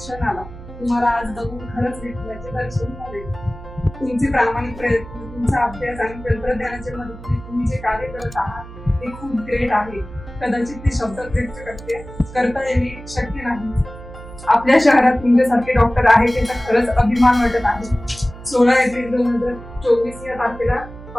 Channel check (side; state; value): right; noise; hum, 15 dB below the sound